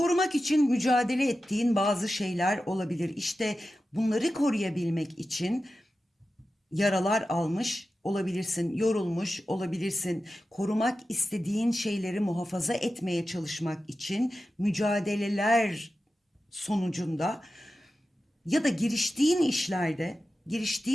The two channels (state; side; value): normal; both; correlation 0.93